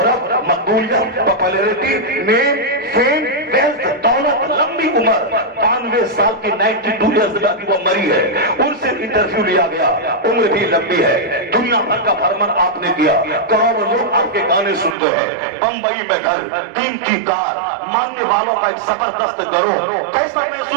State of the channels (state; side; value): drops out; left; at 15.0 s